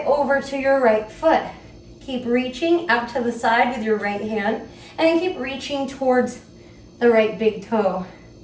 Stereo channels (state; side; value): identical; both; correlation 1.00